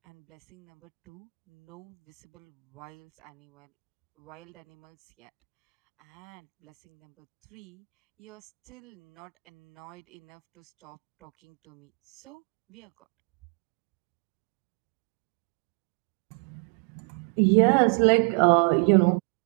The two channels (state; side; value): quieter; left; 37.7 dB